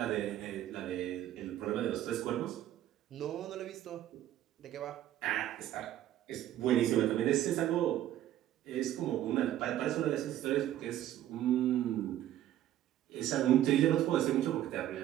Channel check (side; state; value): left; quieter; 12.6 dB